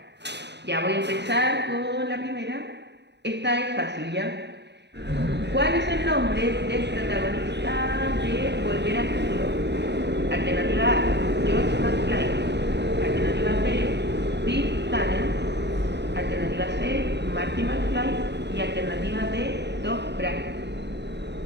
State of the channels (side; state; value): left; late; 0.50 ms